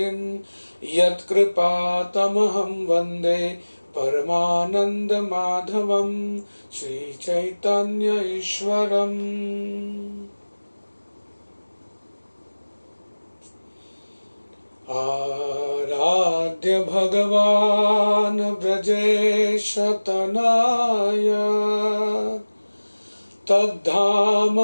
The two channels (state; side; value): inverted; both; correlation -1.00